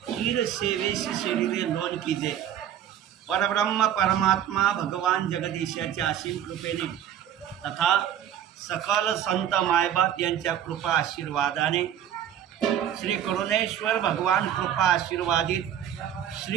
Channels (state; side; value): quieter; left; 10.2 dB